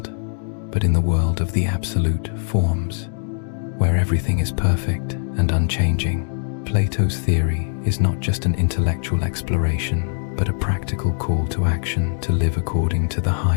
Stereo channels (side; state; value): right; silent; 58 dB below the other